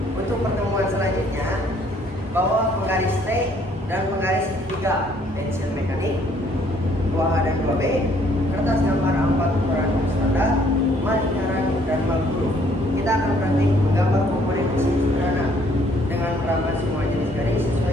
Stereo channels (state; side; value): normal; both; correlation 0.63